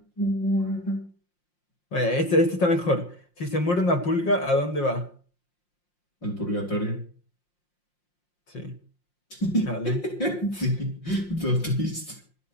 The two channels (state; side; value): late; right; 5.7 ms